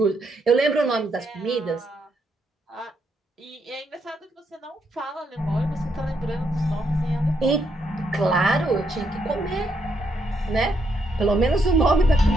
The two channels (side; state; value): both; normal; correlation 0.77